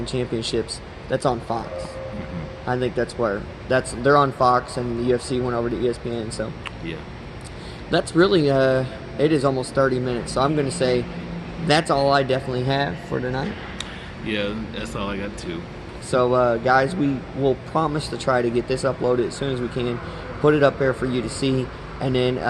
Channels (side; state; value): both; identical; correlation 1.00